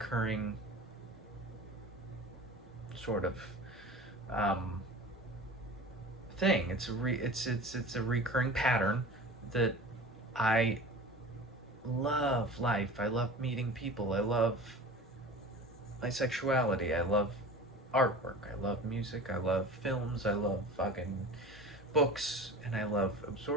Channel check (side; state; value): both; normal; correlation 0.37